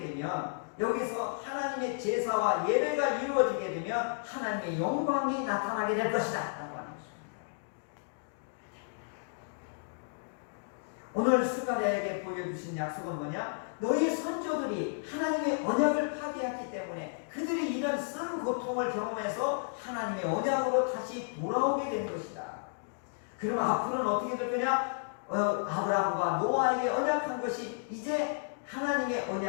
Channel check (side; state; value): right; silent; digital silence